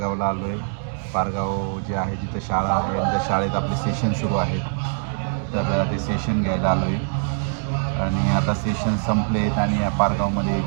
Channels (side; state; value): left; silent; digital silence